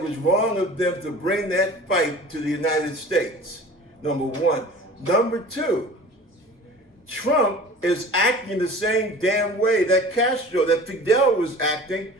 was wrong of them to bring that fight to the United States, number one. Number two, Trump is acting the same damn way that Fidel was acting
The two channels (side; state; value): both; normal; correlation 0.42